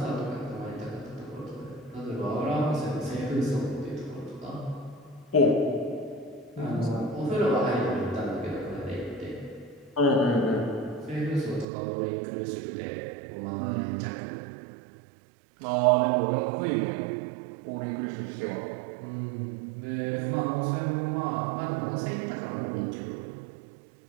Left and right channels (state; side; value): drops out; left; at 11.7 s